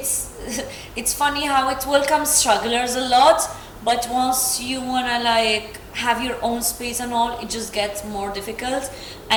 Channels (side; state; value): both; identical; correlation 1.00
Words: funny how it welcomes strugglers a lot, but once you wanna like have your own space and all, it just gets more difficult.